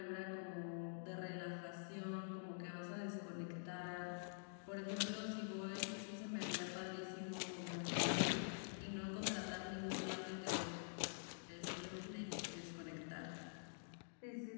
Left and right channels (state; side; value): silent; right; digital silence